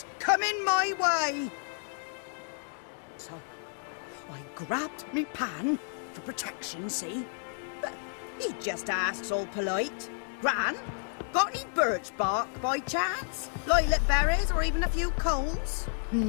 coming my way. So, I grabbed me pan, for protection, see? But he just asks all polite, Gran, got any birch bark by chance? Lilac berries or even a few coals?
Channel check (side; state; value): right; silent; digital silence